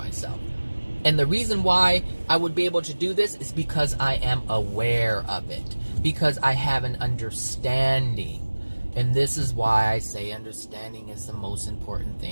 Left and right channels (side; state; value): both; inverted; correlation -1.00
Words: And the reason why I would be able to do this is because I am aware of it. Because I have an understanding. And this is why I say understanding is the most important